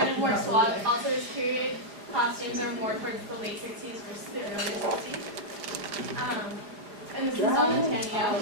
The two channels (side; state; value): left; late; 4.9 ms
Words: of more suave. Also, his period costumes are more towards the late 60s versus the early 60s. And this is on Antonio.